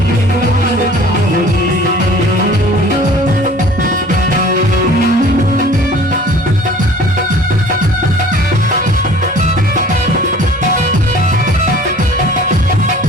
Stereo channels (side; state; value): both; normal; correlation 0.48